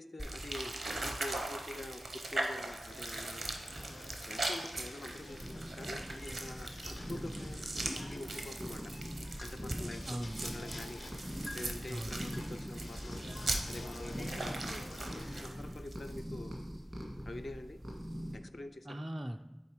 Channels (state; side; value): normal; both; correlation 0.94